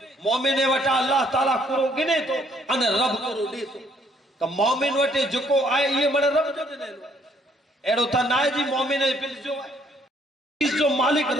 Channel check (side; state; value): both; normal; correlation 0.66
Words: مومنے وٹا اللہ تعالیٰ کرو گنے تو انہیں رب کرو دے تو مومن وٹے جکو آئے یہ مڑے رب جو دینے لو ایڑو تا نائے جی مومن پنج جو ہے اس جو مالک